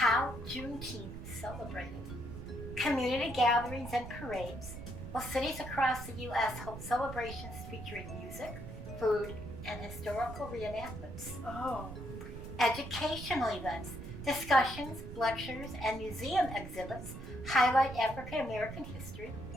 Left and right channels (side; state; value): right; noise; rumble, 10 dB below the sound